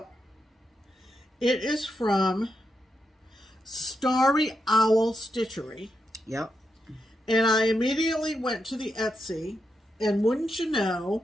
it is from StarryOwlStitchery. Yep. And I immediately went to the Etsy, and wouldn't you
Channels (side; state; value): both; normal; correlation 0.85